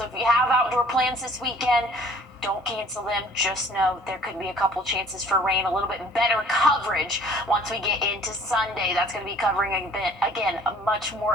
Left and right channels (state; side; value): normal; both; correlation 0.54